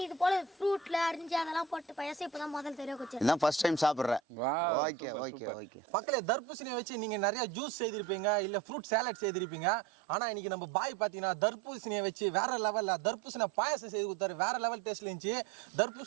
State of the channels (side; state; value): left; drops out; at 4.2 s